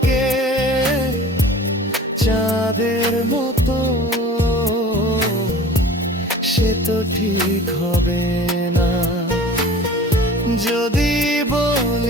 চাঁদের মতো, সে তো ঠিক হবে না। যদি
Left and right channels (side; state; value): both; normal; correlation 0.42